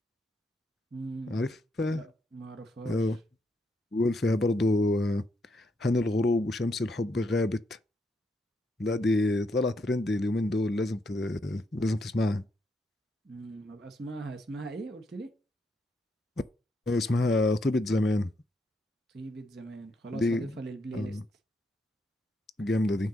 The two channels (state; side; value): normal; both; correlation 0.77